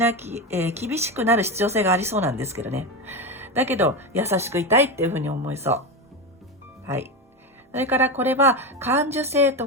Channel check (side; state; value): both; normal; correlation 0.17